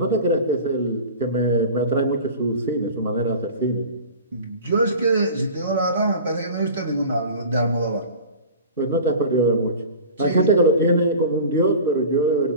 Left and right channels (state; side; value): inverted; both; correlation -0.37